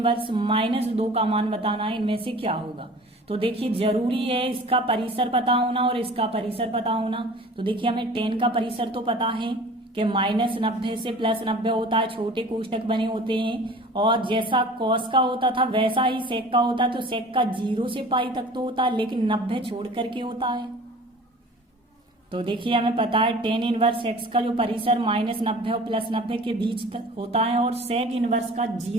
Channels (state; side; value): normal; both; correlation 0.43